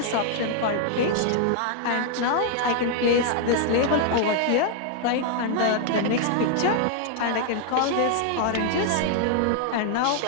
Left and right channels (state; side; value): different; both; correlation 0.00